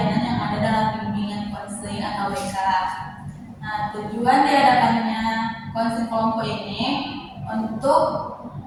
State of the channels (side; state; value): both; identical; correlation 1.00